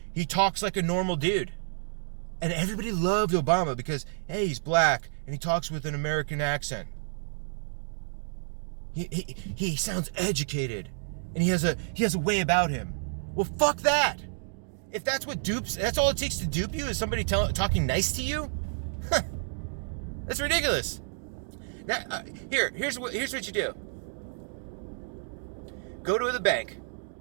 he talks like a normal dude. And everybody loved Obama because, hey, he's black and he talks with an American accent. He sounds educated and he has a way about him. Well, fuck that. If that's all it takes to dupe you is somebody talking nice to you? That's ridiculous. Now, here's what you do. Go to the bank.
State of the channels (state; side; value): silent; left; digital silence